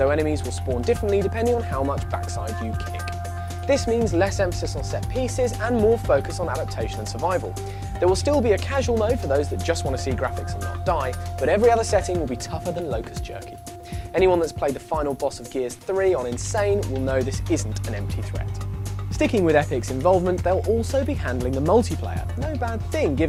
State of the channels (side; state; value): both; identical; correlation 1.00